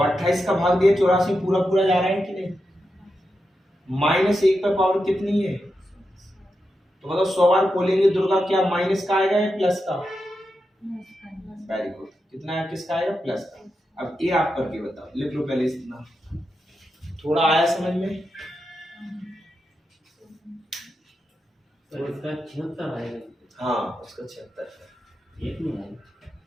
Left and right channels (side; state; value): both; normal; correlation 0.88